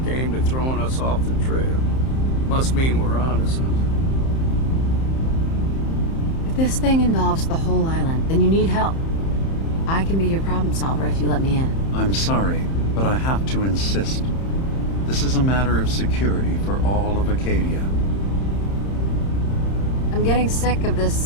aimed at throwing us off the trail. Must mean we're onto something. If this thing involves the whole island, then you need help. I can be your problem solver if you let me in. I'm sorry, but I have to insist. This is a matter of security for all of Acadia. I'm getting sick of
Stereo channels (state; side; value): late; right; 31 ms